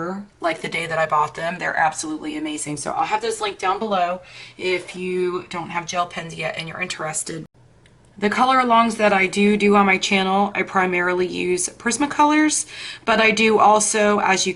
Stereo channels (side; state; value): both; identical; correlation 1.00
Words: like the day that I bought them. They're absolutely amazing. So I'll have those linked down below if you don't have gel pens yet and you're interested. The color alongs that I do on my channel, I primarily use Prismacolors, but I do also, as you